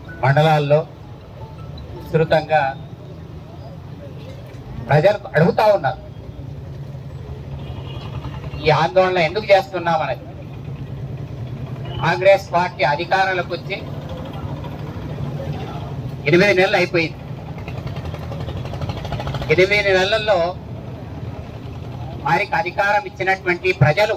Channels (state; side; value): identical; both; correlation 1.00